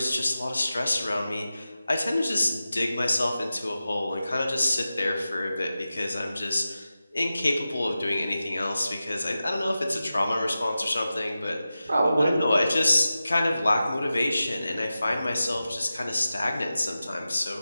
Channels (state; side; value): inverted; both; correlation -0.93